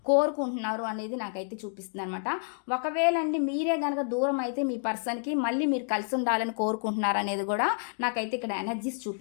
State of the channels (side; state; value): right; silent; digital silence